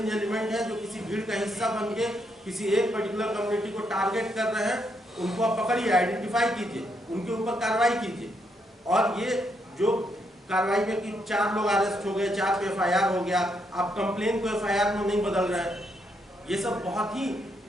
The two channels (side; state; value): both; normal; correlation 0.77